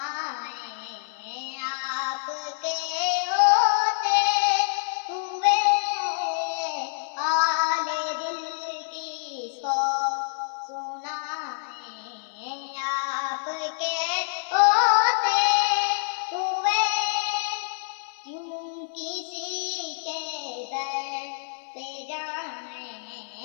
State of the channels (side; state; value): right; silent; digital silence